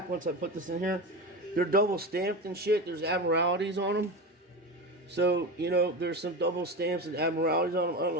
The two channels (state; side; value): normal; both; correlation 0.23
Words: once I put this in here. They're double stamped and shit. There's admiralities on them. So, you know, there's some double stamps and admiralities on them. I don't